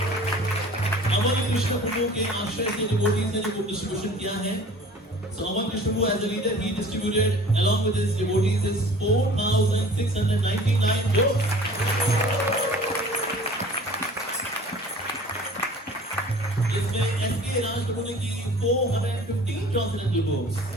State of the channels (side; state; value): both; normal; correlation 0.45